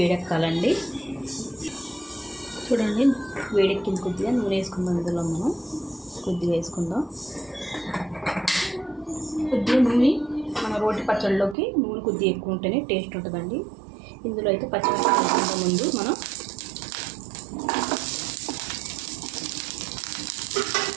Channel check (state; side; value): drops out; left; at 11.6 s